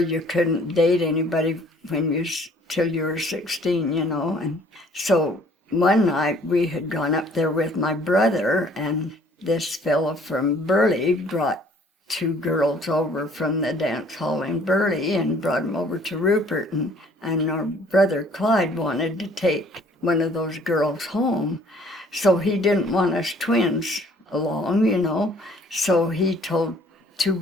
couldn't date anybody till you were 16, and so one night we had gone up there with my brother, and this fellow from Burley brought two girls over from the dance hall in Burley and brought them over to Rupert, and our brother Clyde wanted to take one of those girls home, so he didn't want us twins along, so he told two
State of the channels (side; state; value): both; normal; correlation 0.57